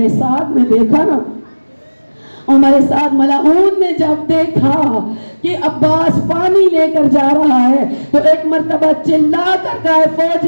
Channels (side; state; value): both; inverted; correlation -1.00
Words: سعد نے دیکھا نا، عمر سعد ملعون نے جب دیکھا کہ عباس پانی لے کر جا رہا ہے تو ایک مرتبہ چلا کر کہا